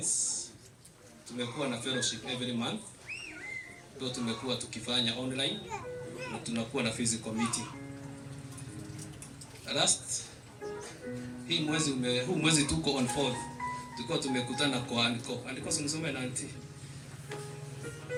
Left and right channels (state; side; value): identical; both; correlation 1.00